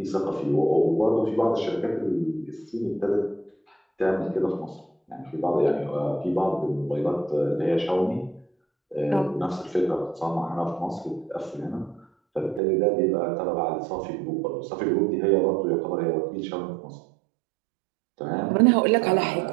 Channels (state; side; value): drops out; left; at 12.6 s